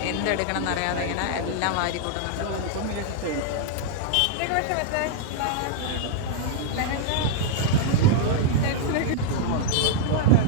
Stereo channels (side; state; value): both; different; correlation -0.01